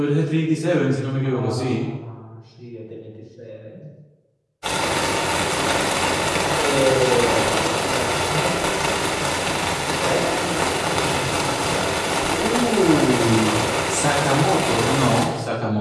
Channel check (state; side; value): identical; both; correlation 1.00